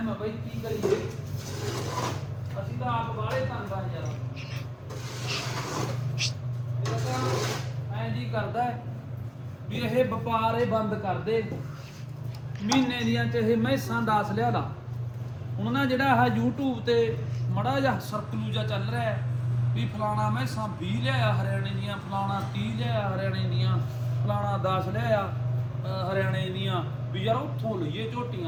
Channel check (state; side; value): identical; both; correlation 1.00